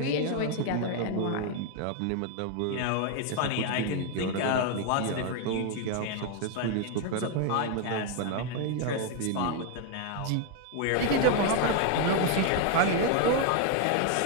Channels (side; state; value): both; different; correlation 0.01